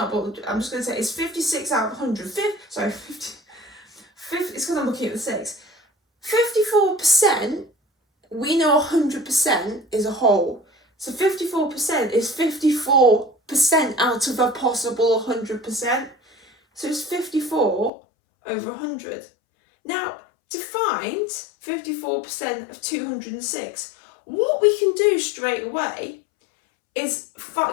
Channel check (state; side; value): drops out; right; at 17.9 s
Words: but I'm just going to say it's 56 out of 100. It's because I'm looking at the 6. 54%, we know 100% is a whole. So 54% is 54% out of a possible 100%. So it's 54 over 100. Now, to find 54% of 206, what we can do straight away is